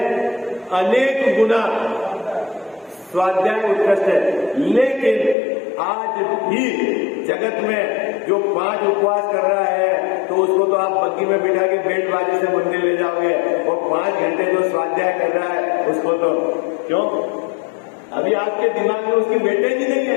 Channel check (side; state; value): right; drops out; at 5.4 s